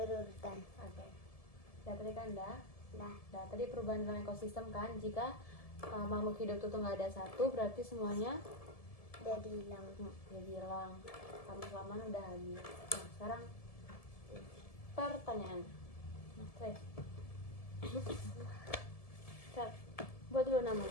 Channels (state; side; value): late; right; 1.7 ms